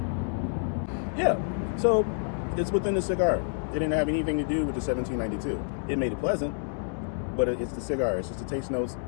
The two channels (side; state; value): right; silent; digital silence